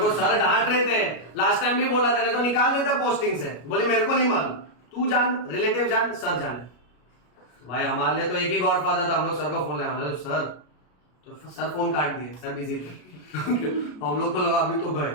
को सर डांट रहे थे, लास्ट टाइम भी बोला था, नहीं तो निकाल देता पोस्टिंग से। बोले मेरे को नहीं मालूम, तू जान, रिलेटिव जान, सर जाने। तो भाई हमारे लिए तो एक ही गॉडफादर था, हम लोग सर को फोन लगाया, सर, तो सर फोन काट दिए, सर बिजी थे। हम लोग को लगा अभी तो गए,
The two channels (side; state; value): right; late; 33 ms